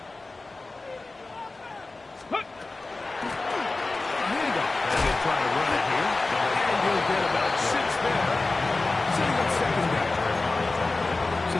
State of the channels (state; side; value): quieter; right; 3.4 dB